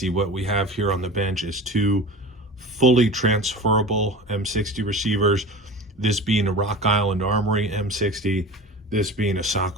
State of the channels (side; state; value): both; normal; correlation 0.35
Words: What we have here on the bench is two fully transferable M60 receivers, this being a Rock Island Armory M60, this being a